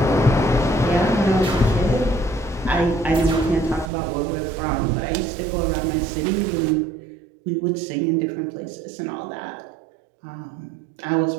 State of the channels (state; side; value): drops out; left; at 3.9 s